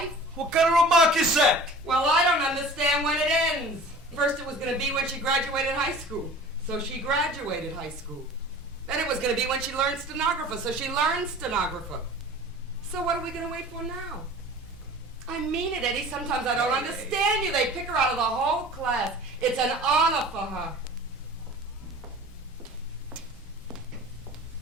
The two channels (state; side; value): normal; both; correlation 0.42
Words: What kind of remark is that? Well, I don't understand when it ends. First it was gonna be when she graduated high school. So she graduated high school. Then it was gonna be when she learned stenographer. So she learned stenographer. So what are we gonna wait for now? I mean it, Eddie. Sometimes I don't understand you. They pick her out of the whole class. It's an honor for her.